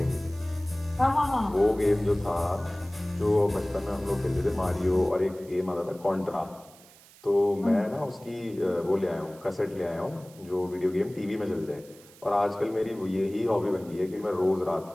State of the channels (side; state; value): right; noise; hiss, 24 dB below the sound